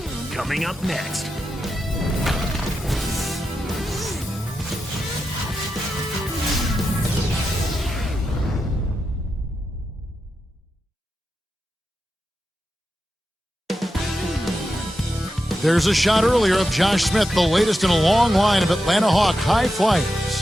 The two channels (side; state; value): both; normal; correlation 0.88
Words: Coming up next. There's a shot earlier of Josh Smith, the latest in a long line of Atlanta Hawk high flyers.